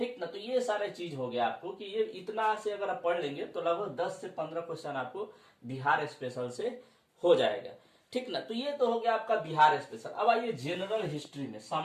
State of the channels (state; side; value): identical; both; correlation 1.00